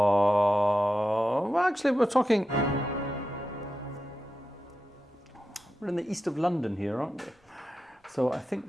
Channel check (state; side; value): normal; both; correlation 0.90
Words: Well, actually, we're in the east of London here, aren't we? So I think